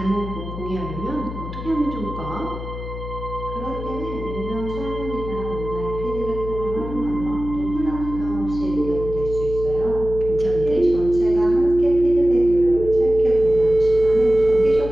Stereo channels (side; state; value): left; noise; hum, 9 dB below the sound